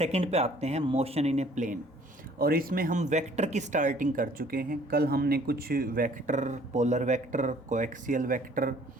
पे आते हैं, मोशन इन ए प्लेन। और इसमें हम वेक्टर की स्टार्टिंग कर चुके हैं। कल हमने कुछ vector, polar vector, coaxial vector,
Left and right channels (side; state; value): both; normal; correlation 0.57